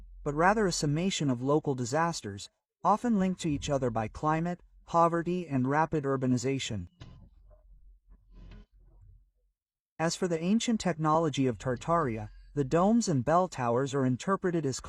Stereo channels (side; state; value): both; identical; correlation 1.00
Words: but rather a summation of local disasters, often linked to each other by climate, poverty, and rapid urbanization. As for the ancient technology of Tartaria, the domes and bell towers are interpreted as